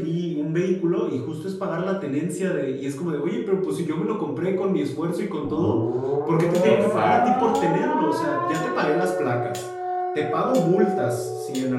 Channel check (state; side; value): identical; both; correlation 1.00